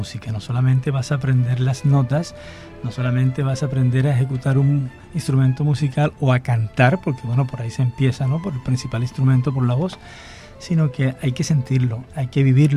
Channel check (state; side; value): identical; both; correlation 1.00